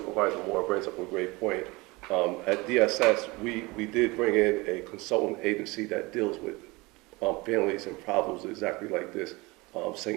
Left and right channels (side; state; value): left; quieter; 23.7 dB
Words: Moore brings up a great point. At DSS, we did bring in a consultant agency that deals with families and problems exactly like this,